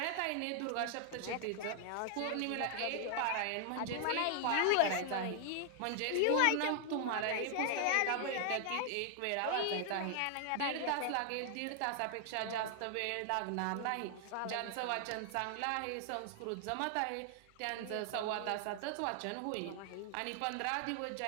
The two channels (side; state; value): both; different; correlation 0.00